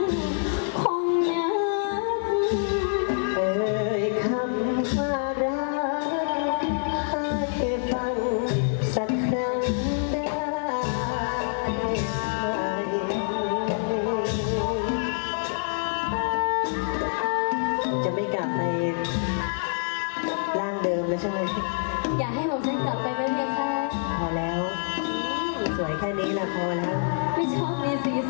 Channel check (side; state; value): right; silent; 57 dB below the other